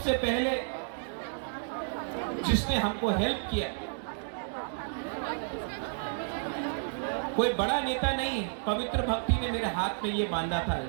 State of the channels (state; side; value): silent; left; digital silence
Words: पहले जिसने हमको हेल्प किया, कोई बड़ा नेता नहीं, पवित्र भक्ति ने मेरे हाथ में ये बांधा था,